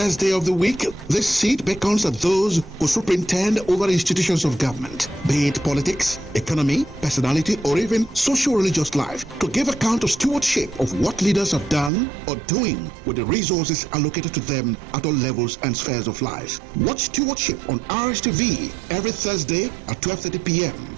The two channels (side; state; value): left; drops out; at 11.9 s